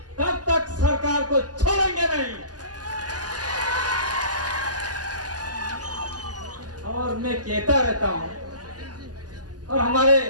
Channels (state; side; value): late; left; 0.68 ms